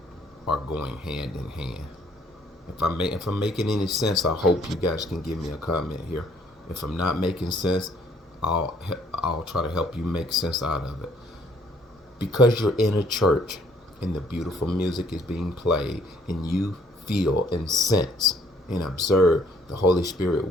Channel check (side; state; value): both; normal; correlation 0.63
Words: are going hand in hand. If I'm making any sense, I hope you guys can give me a comment here. If I'm not making sense, I'll try to help you make sense out of it. Because you're in a church and the beautiful music is being played and you feel and sense and observe the Holy Spirit